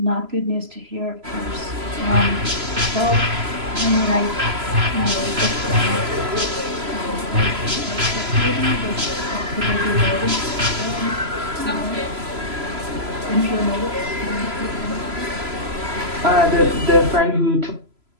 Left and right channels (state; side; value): late; left; 3.0 ms